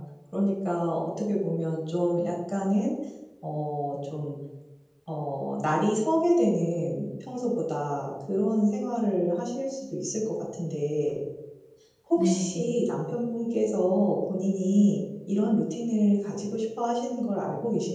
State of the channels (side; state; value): both; identical; correlation 1.00